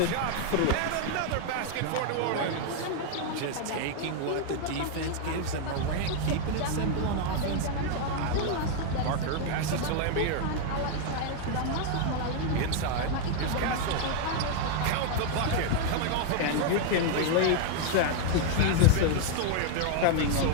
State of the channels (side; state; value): both; different; correlation 0.00